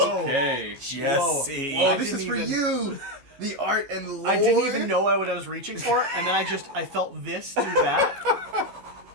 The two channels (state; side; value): late; left; 14 ms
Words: Okay. Jesse. Whoa, Oh, this is for you. The art and lore. I didn't even know what I was reaching for, and then I felt this do that.